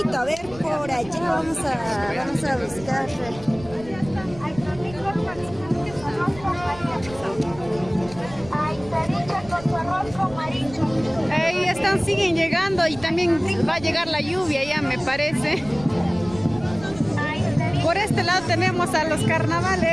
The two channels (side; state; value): right; noise; rumble, 17 dB below the sound